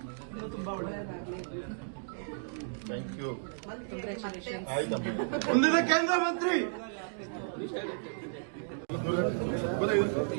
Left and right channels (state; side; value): silent; left; digital silence